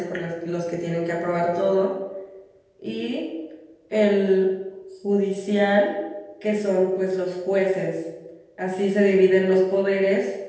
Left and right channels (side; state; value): both; identical; correlation 1.00